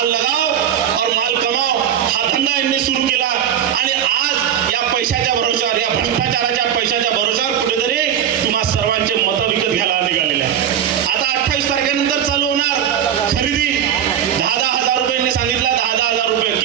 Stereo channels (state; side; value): quieter; left; 9.5 dB